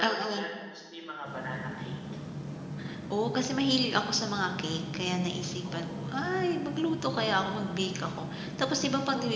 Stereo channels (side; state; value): both; identical; correlation 1.00